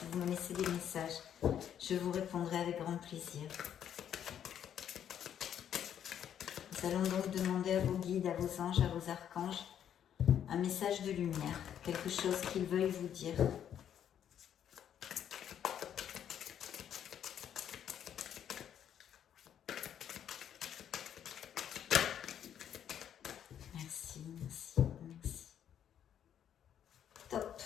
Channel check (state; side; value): quieter; right; 9.5 dB